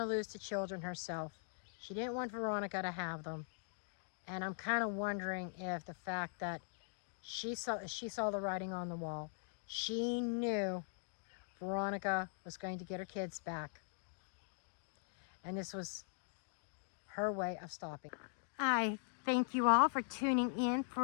lose the children herself. She didn't want Veronica to have them. And I'm kind of wondering if the fact that she saw the writing on the wall, she knew Veronica was going to get her kids back. And this was her way of stopping. I thank you all for tuning in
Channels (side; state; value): right; silent; digital silence